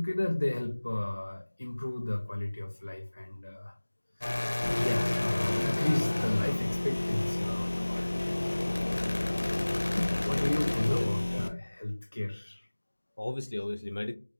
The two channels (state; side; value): inverted; both; correlation -1.00